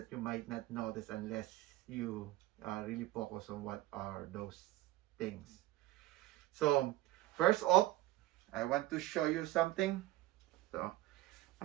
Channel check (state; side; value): quieter; left; 16.4 dB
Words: you might not notice unless you really focus on what are those things. So first off, I want to show you something. So